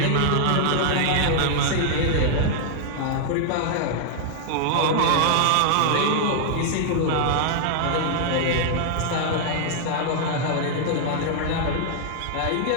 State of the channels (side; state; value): both; different; correlation 0.00